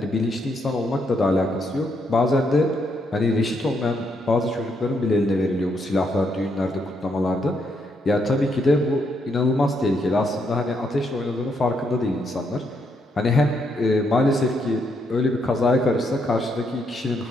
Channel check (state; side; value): normal; both; correlation 0.76